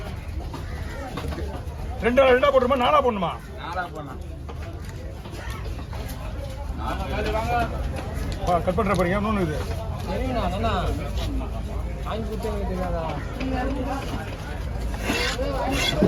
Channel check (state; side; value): identical; both; correlation 1.00